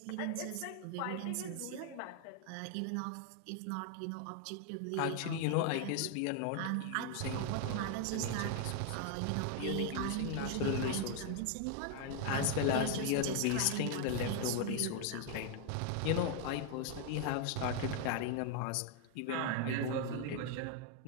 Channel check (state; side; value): different; both; correlation 0.00